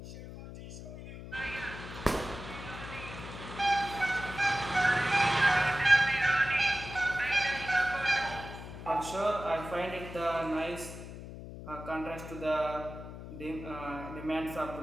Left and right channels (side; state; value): left; noise; hum, 11 dB below the sound